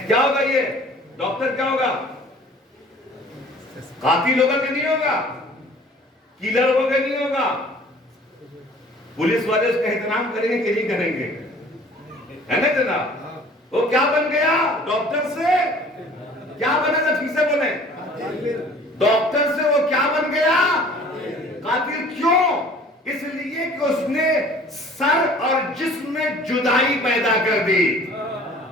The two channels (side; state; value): both; normal; correlation 0.50